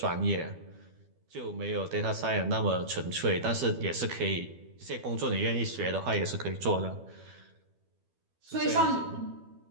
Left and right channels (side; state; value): left; late; 12 ms